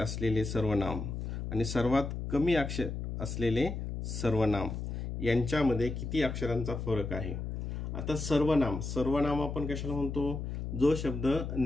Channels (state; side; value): noise; left; hum, 5 dB below the sound